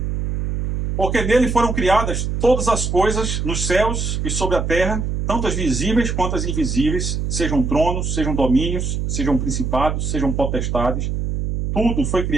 Porque nele foram criadas todas as coisas nos céus e sobre a terra, tanto as visíveis quanto as invisíveis, sejam tronos, sejam domínios, sejam principados, sejam potestades. Tudo foi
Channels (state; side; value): noise; right; hum, 2 dB below the sound